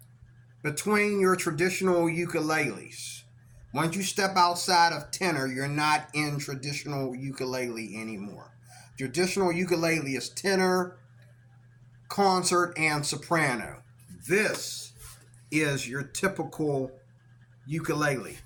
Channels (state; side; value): identical; both; correlation 1.00